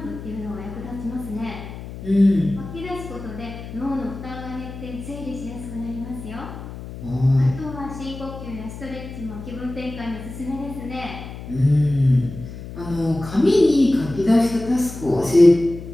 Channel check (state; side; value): noise; left; hum, 11 dB below the sound